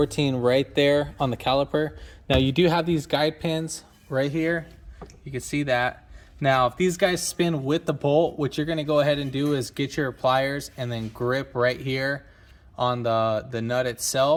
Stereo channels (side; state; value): both; identical; correlation 1.00